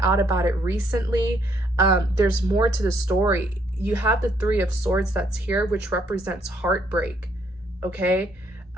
out about it recently. There's more to the story. You have the Three of Swords that's here, which represents heartbreak. Okay.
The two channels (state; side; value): normal; both; correlation 0.69